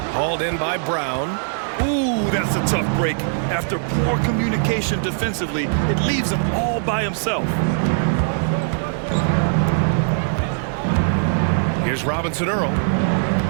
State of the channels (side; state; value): left; silent; 65 dB below the other